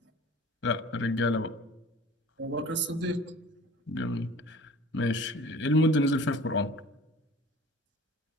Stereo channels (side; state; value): both; normal; correlation 0.44